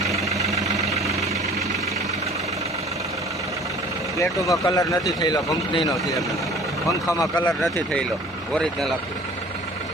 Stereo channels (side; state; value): both; normal; correlation 0.48